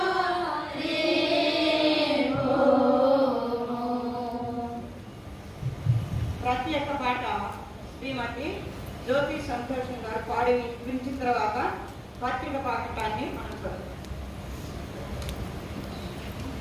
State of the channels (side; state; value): both; identical; correlation 1.00